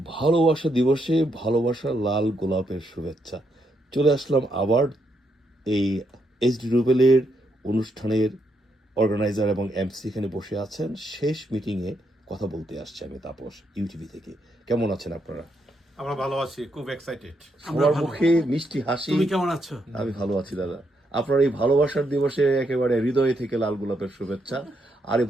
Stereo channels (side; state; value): both; normal; correlation 0.78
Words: ভালোবাসা দিবসে ভালোবাসার লাল গোলাপের শুভেচ্ছা। চলে আসলাম আবার এই এইচডি রুবেলের অনুষ্ঠানের অর্গানাইজার এবং এমসি এখানে বসে আছেন। শেষ মিটিংয়ে কথা বলতে আসছে আমি তাপস, ইউটিভি থেকে। কেমন আছেন আপনারা? আমরা ভালো আছি, খুব এক্সাইটেড। সবার মুখে মিষ্টি হাসি। তুমি কেমন আছো? আমি ভালো আছি দাদা। আপনার এই ভালোবাসার দিবসে একেবারে হৃদয় থেকে লাল গোলাপের শুভেচ্ছা। আর এই